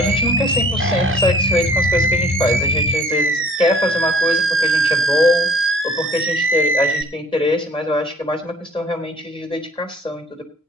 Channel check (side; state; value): both; normal; correlation 0.55